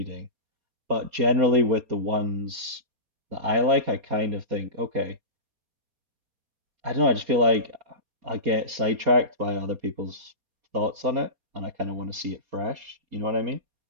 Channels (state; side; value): late; left; 4.2 ms